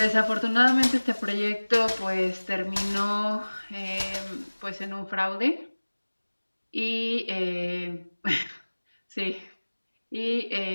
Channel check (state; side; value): inverted; both; correlation -1.00